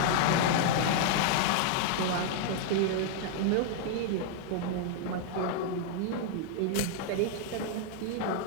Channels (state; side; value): different; both; correlation 0.00